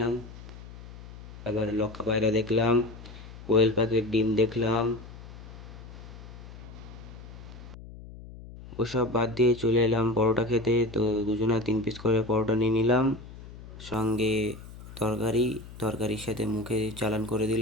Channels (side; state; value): left; noise; hum, 15 dB below the sound